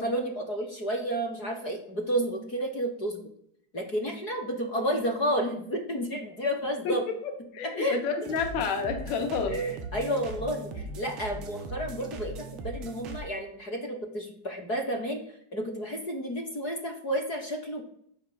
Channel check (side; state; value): right; late; 4.8 ms